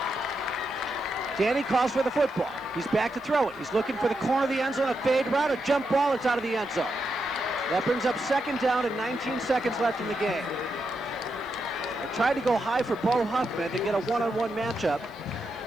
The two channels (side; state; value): left; noise; hiss, 30 dB below the sound